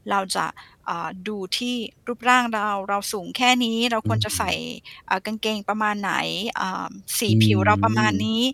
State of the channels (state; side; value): identical; both; correlation 1.00